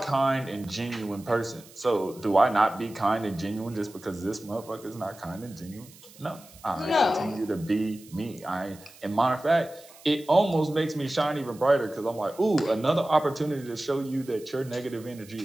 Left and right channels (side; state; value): right; noise; hiss, 22 dB below the sound